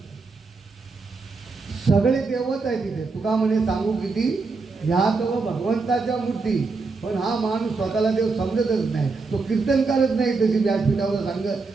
सगळे देवच आहे तिथे. तुका म्हणे सांगू किती, ह्या तो भगवंताच्या मूर्ती. पण हा माणूस स्वतःला देव समजतच नाही, तो कीर्तनकारच नाही तशी व्यासपीठावर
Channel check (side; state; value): left; quieter; 4.1 dB